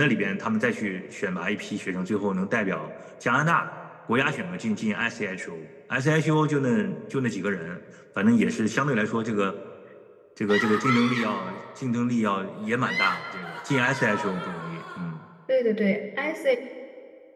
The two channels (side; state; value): both; identical; correlation 1.00